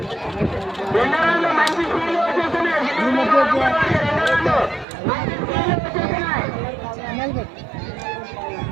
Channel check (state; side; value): drops out; left; at 4.9 s